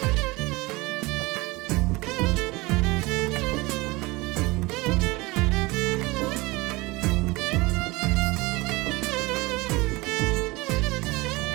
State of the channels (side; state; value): left; quieter; 22.9 dB